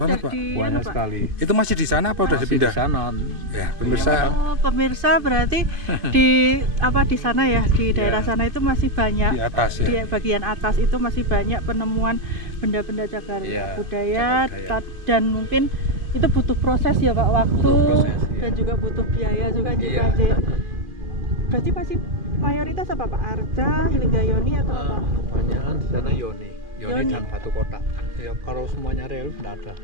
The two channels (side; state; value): left; late; 2.5 ms